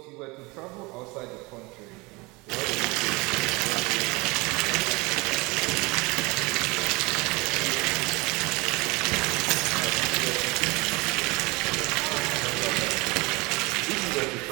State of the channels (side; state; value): left; quieter; 25.0 dB